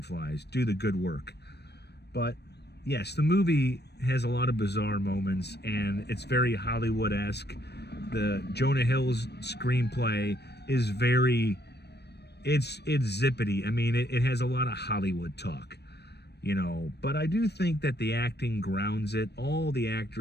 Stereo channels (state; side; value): late; right; 0.48 ms